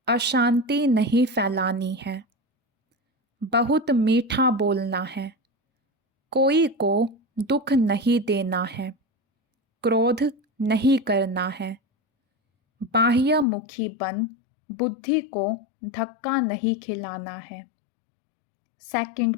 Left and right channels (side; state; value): right; drops out; at 13.5 s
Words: अशांति नहीं फैलानी है, बहुत मीठा बोलना है, कोई को दुख नहीं देना है, क्रोध नहीं करना है, बाह्यमुखी बन बुद्धि को धक्का नहीं खिलाना है। सेकंड